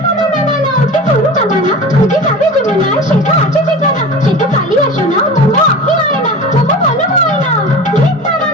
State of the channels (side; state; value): both; normal; correlation 0.34